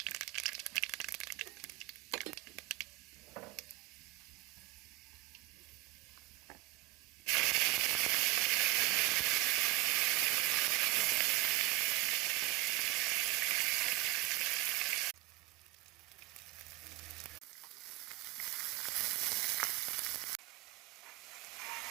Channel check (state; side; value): quieter; left; 20.6 dB